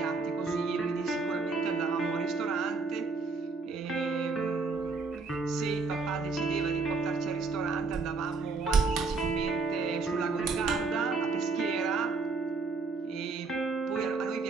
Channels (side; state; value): left; quieter; 4.2 dB